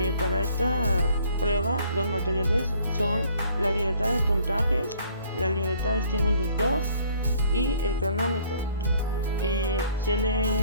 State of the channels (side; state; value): both; inverted; correlation -0.58